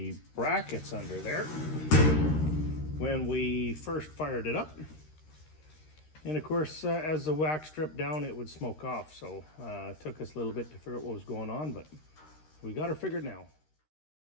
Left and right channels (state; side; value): late; right; 13 ms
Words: brackets under there when we first fired it up. And of course, as the wax dripped down, it would smoke off. So it took us a little bit to figure out what was going on, but we got her figured now.